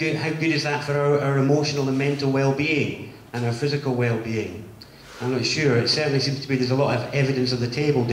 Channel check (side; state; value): both; identical; correlation 1.00